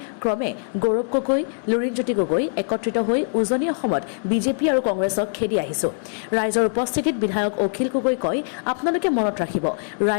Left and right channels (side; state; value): right; silent; digital silence